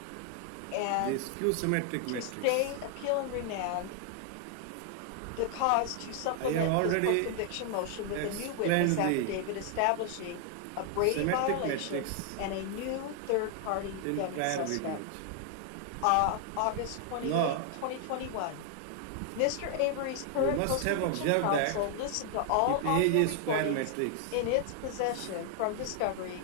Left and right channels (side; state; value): both; different; correlation 0.00